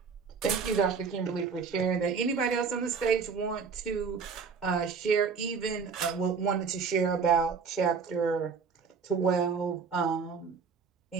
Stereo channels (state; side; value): quieter; left; 5.7 dB